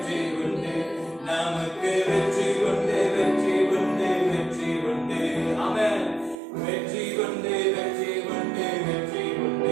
உண்டு. நமக்கு வெற்றி உண்டு, வெற்றி உண்டு, வெற்றி உண்டு. ஆமென். வெற்றி உண்டு, வெற்றி உண்டு, வெற்றி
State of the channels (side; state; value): left; drops out; at 6.4 s